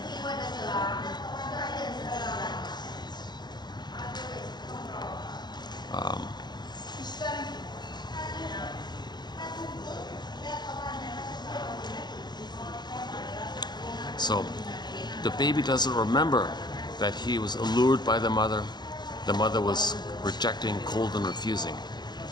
So the baby doesn't remember that he was allured by the mother. The mother was rejecting, cold, and refusing. He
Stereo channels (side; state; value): right; late; 0.21 ms